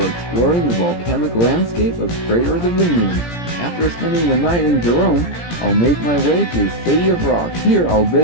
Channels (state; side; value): late; right; 17 ms